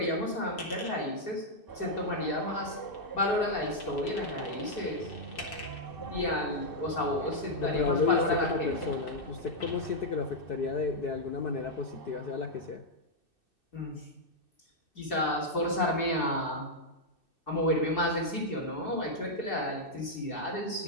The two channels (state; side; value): late; right; 2.6 ms